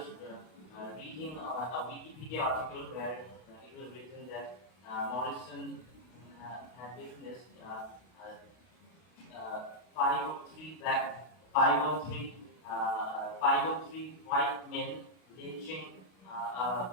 reading a Wikipedia article where it was written that Morrison had witnessed 503 white men lynching a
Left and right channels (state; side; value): late; right; 32 ms